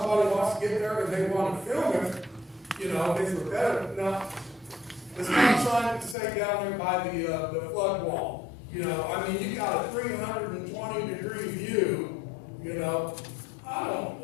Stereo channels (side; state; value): right; drops out; at 6.2 s